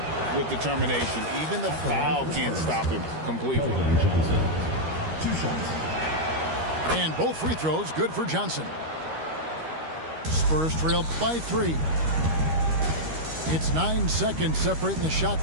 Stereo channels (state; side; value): late; left; 13 ms